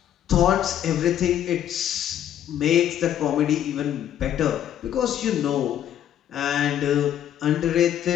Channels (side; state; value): right; quieter; 10.7 dB